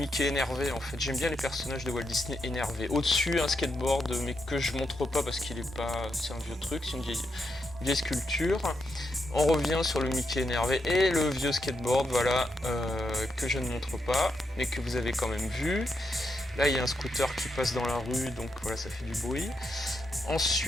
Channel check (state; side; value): normal; both; correlation 0.83